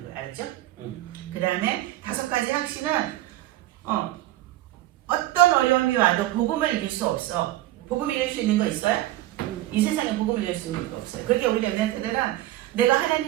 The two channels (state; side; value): quieter; left; 15.5 dB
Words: 거예요. 알았죠? 그 다음에 5가지 확신은 어떤 어려움이 와도 복음을 이길 수 없어. 복음 이길 수 있는 거 있어요? 이 세상에 복음을 이길 수 있는 거 없어요. 그렇게 우리 랩런트들은 내가